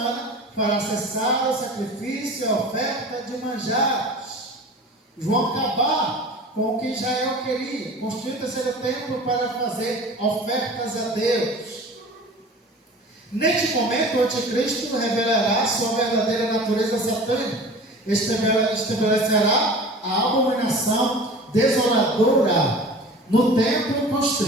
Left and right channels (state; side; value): normal; both; correlation 0.40